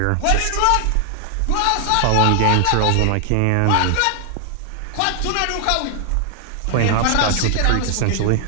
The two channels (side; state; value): both; different; correlation 0.00